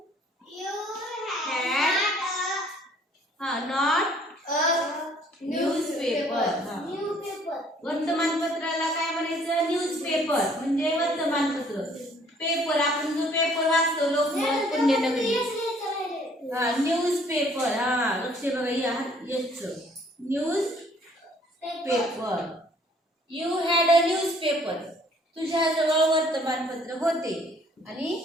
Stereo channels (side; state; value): both; normal; correlation 0.59